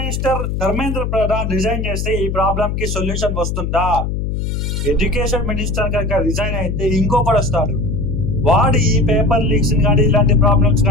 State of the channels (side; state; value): left; noise; hum, 2 dB below the sound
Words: Dharmendra Pradhan resign చేస్తే ఈ problem కి solution వస్తుందా? ఎడ్యుకేషన్ మినిస్టర్ కనుక రిజైన్ అయితే ఇంకొకటి వస్తాడు, వాడు ఈ పేపర్ లీక్స్ కానీ ఇలాంటి ప్రాబ్లమ్స్